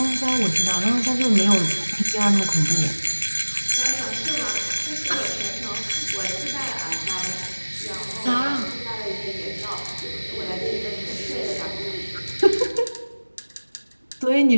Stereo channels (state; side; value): inverted; both; correlation -1.00